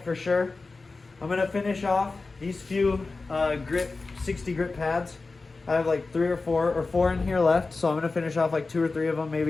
for sure. I'm going to finish off these few 60 grit pads. I have like 3 or 4 or 4 in here left, so I'm going to finish off like 2 or 3 of them,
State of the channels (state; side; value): quieter; right; 3.8 dB